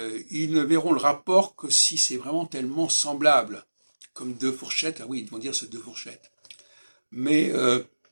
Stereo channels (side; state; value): both; inverted; correlation -1.00